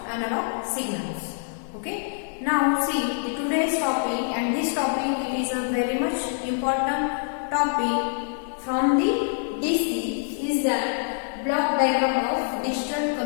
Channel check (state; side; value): silent; right; 55 dB below the other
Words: analog signals. Okay. Now see the today's topic, and this topic is a very much important topic from the DC is that block diagram of digital